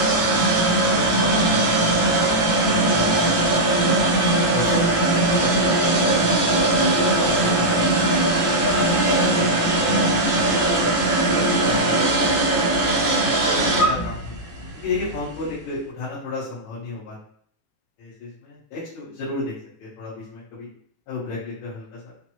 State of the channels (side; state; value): right; late; 18 ms